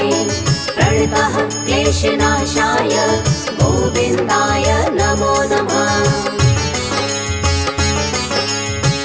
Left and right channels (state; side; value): identical; both; correlation 1.00